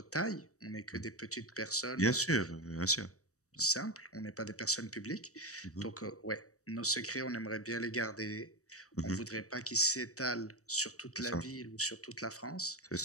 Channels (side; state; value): right; late; 0.65 ms